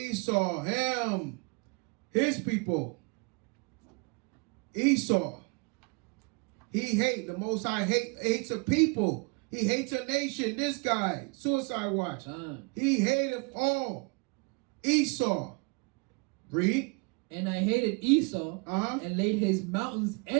Him. His people. Esau. He hates. The Most High hates a people. He hates a nation. This guy. Suicide watch. He hated all. Esau. Read. And I hated Esau and laid his mountains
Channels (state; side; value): quieter; left; 31.9 dB